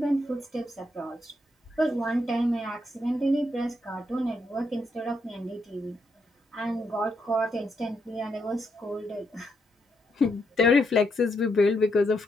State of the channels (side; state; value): both; normal; correlation 0.79